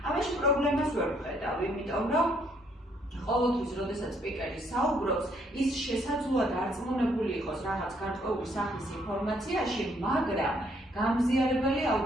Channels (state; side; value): normal; both; correlation 0.68